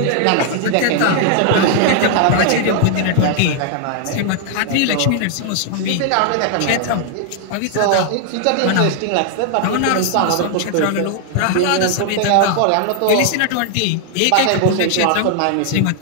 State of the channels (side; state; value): both; different; correlation 0.00